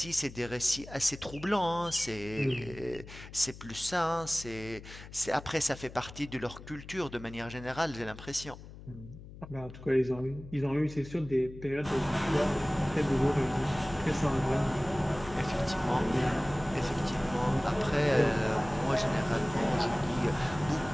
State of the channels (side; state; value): left; noise; hum, 15 dB below the sound